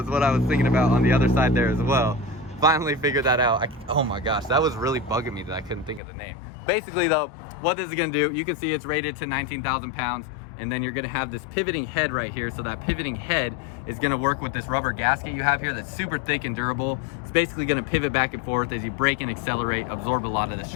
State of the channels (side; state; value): right; drops out; at 6.0 s